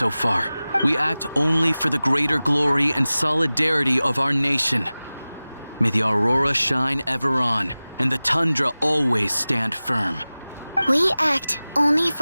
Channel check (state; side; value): inverted; both; correlation -0.98